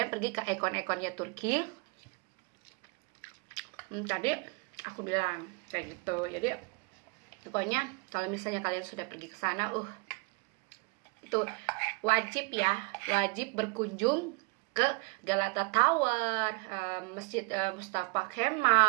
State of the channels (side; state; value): left; quieter; 30.4 dB